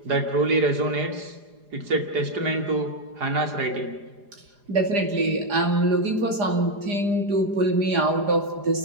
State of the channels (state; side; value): late; left; 4.9 ms